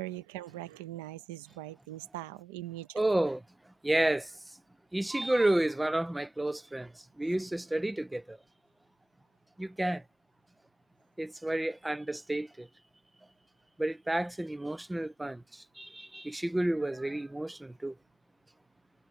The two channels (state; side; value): normal; both; correlation 0.97